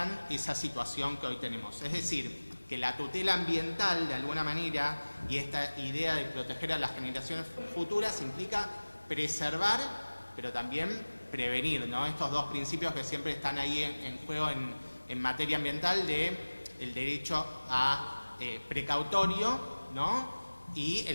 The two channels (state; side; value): inverted; both; correlation -1.00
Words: esa situación que hoy tenemos. Es decir, que la tutela ambiental, de alguna manera, y esta idea de proteger a las generaciones futuras implica preservar, pero también prevenir, ¿no? Estos dos principios que siempre están ahí en juego en materia ambiental, el derecho a precautorio, ¿no? Y